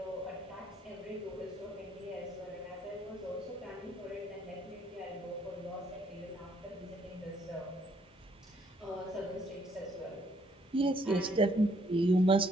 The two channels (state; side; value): normal; both; correlation 0.68